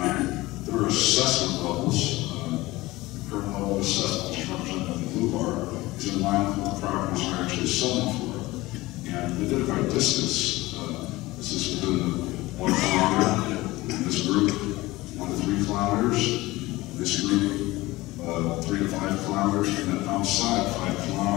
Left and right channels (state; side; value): quieter; right; 19.5 dB